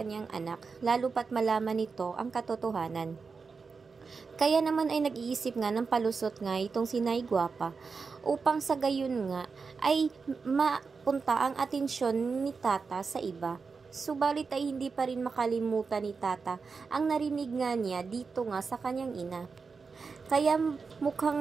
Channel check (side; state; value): left; quieter; 4.9 dB